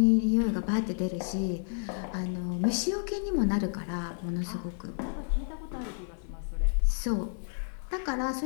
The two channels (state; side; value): silent; right; digital silence